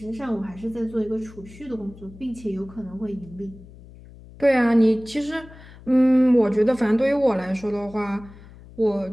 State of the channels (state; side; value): noise; left; hum, 20 dB below the sound